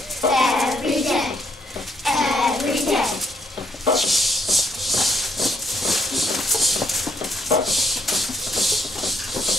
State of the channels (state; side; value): normal; both; correlation 0.72